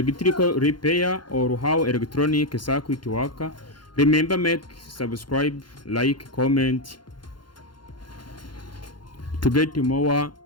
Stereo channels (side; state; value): right; late; 0.71 ms